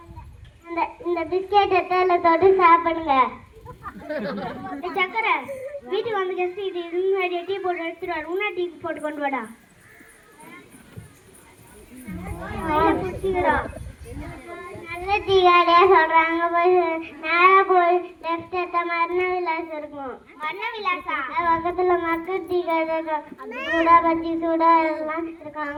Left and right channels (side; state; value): both; identical; correlation 1.00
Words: இந்த பிஸ்கெட் எத்தால தொட்டு சாப்பிடுங்க. சக்கரை, வீட்டுக்கு வந்து கெஸ்ட் இது முன்னாடி டீ போட்டு எடுத்துட்டு வாடா. உன்னா டீ போட்டு கொண்டு வாடா. நல்ல டீ கடையா சொல்றாங்க. போய் நேரா போய் லெஃப்ட் எடுத்தா மரண விலாஸ் இருக்கும். மரண விலாசா? பக்கத்துல மக்கள் டீ கடை சூடா பச்சி சூடா எல்லாம் இருக்கும்.